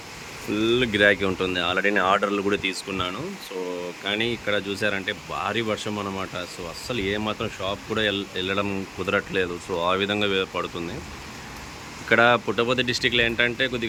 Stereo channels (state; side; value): identical; both; correlation 1.00